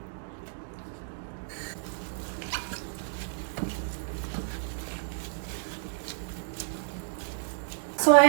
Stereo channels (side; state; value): left; silent; digital silence